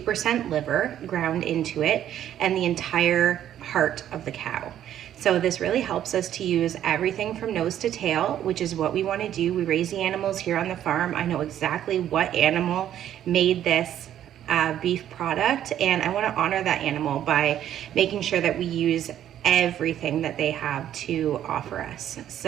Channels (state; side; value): quieter; left; 11.0 dB